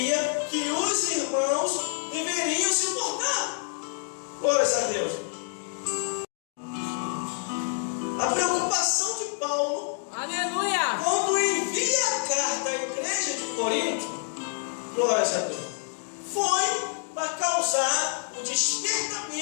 que os irmãos deveriam se portar. Glória a Deus. A preocupação de Paulo, Aleluia. quando envia a carta à igreja de Corinto, glória a Deus, foi para causar o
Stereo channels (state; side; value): silent; right; 60 dB below the other